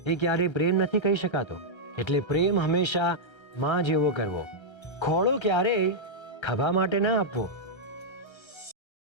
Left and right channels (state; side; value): late; right; 1.3 ms